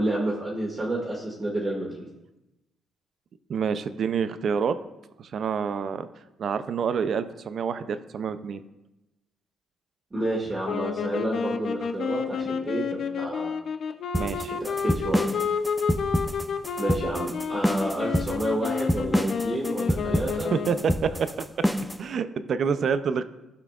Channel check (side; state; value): both; normal; correlation 0.81